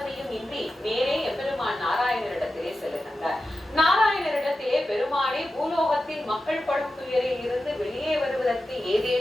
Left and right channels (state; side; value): normal; both; correlation 0.92